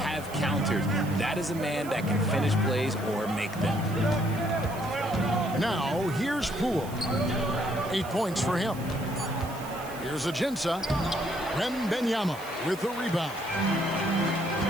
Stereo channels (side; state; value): right; noise; hiss, 17 dB below the sound